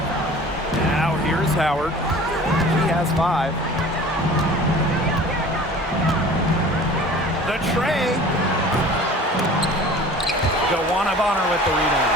Now here's Howard. She has 5. The tray. Joanna Bonner with the rebound.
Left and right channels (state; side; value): normal; both; correlation 0.44